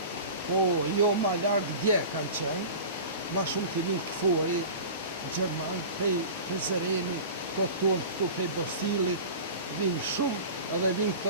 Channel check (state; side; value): inverted; both; correlation -0.35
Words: Po, jo ma larkë dje kanë qenë, ma shumë të vinë këfori, Gjerman, prej Zëreni, të tonë këtu prej Bostilit, vinë shumë, edhe vinë